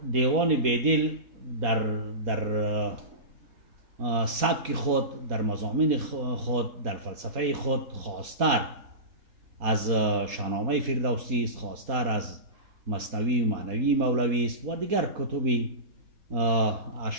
دیوان بیدل در سبک خود، در مضامین خود، در فلسفه خود خاصتر از شاهنامه فردوسی است، خاصتر از مثنوی و معنوی مولوی است و دیگر کتب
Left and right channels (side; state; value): left; late; 4.2 ms